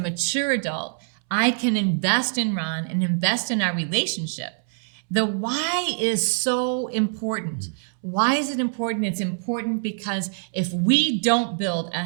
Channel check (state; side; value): silent; left; 62 dB below the other